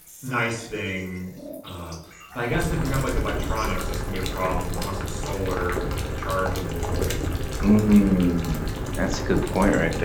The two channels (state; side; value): identical; both; correlation 1.00